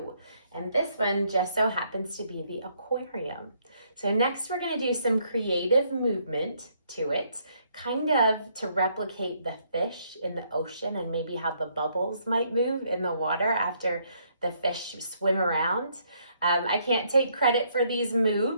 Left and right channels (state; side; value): inverted; both; correlation -0.70